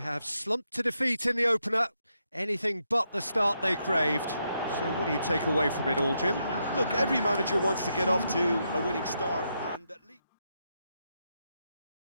have slumped to defeat in the opener. Anything but the start they craved. So what do you take away from it all, Jim? Look, every manager wants to get off to a winning start.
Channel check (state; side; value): inverted; both; correlation -0.81